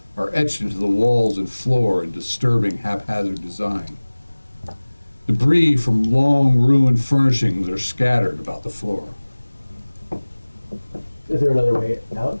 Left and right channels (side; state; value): both; inverted; correlation -1.00